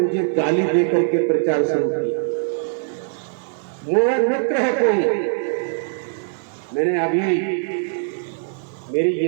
गाली देकर के प्रचार शुरू किया। मेरा मित्र है कोई, मैंने अभी मेरी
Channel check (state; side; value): silent; left; digital silence